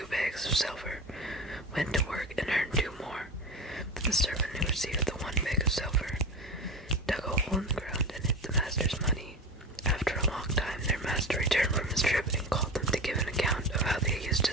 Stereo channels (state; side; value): normal; both; correlation 0.26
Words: bags of silver went to work and earned 2 more. But the servant who received the 1 bag of silver dug a hole in the ground and hid the master's money. After a long time, their master returned from his trip and called them to give an account of how they used